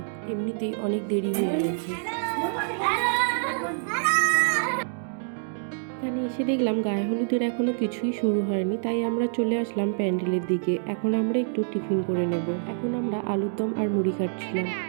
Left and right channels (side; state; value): left; silent; digital silence